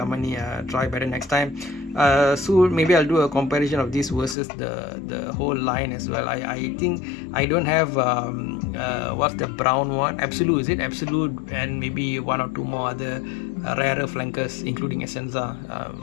try better next time. So maybe I'll do a comparison of this versus the whole line as well. I think I don't have what's the brown one, Absolute, is it Absolute, and maybe 1 or 2 more other rarer flankers, including Essenza.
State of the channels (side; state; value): right; drops out; at 4.4 s